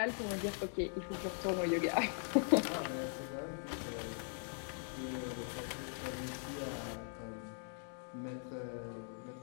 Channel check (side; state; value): right; silent; 51 dB below the other